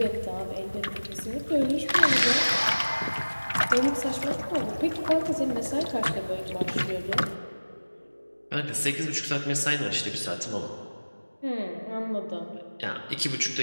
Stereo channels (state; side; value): inverted; both; correlation -1.00